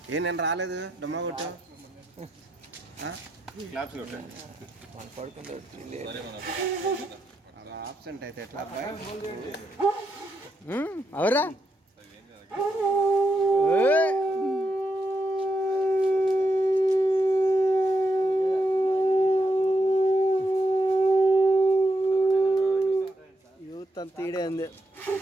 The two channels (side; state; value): both; normal; correlation 0.82